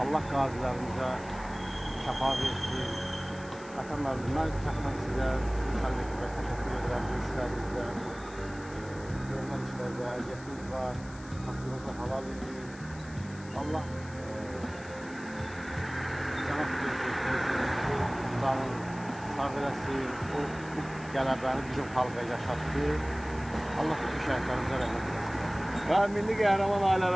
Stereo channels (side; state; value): left; noise; hiss, 20 dB below the sound